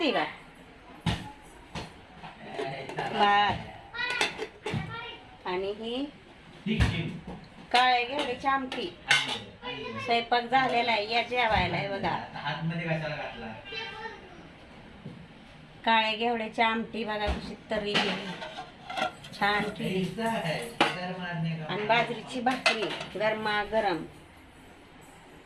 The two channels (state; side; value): identical; both; correlation 1.00